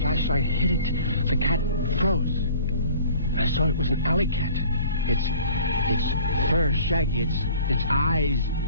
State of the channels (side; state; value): both; inverted; correlation -0.49